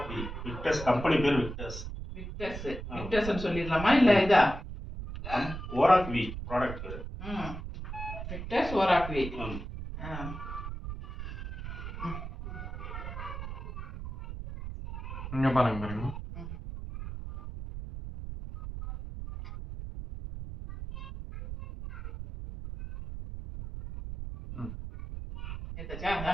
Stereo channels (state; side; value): noise; right; rumble, 8 dB below the sound